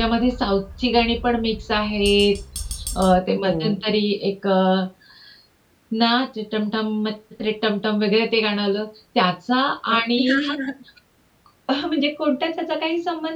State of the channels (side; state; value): both; identical; correlation 1.00